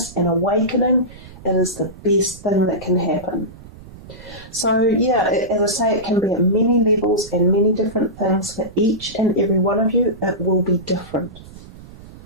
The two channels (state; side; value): noise; right; rumble, 18 dB below the sound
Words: and awakening, it is the best thing that can happen. So yeah, as I say, it can be at many levels and many different things. For each and every one of you, it will be different.